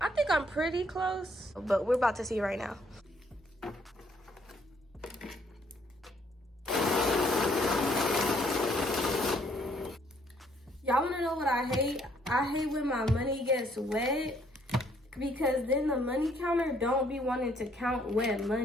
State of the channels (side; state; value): both; normal; correlation 0.67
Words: think I'm pretty close, but we're about to see right now. Y'all wanna know what I hate? I hate when my money gets wet, because then the money counter don't be wanting to count wet